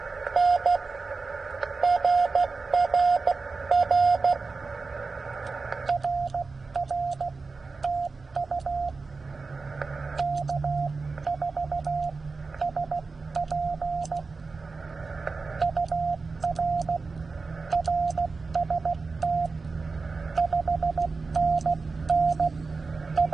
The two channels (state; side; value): quieter; left; 4.2 dB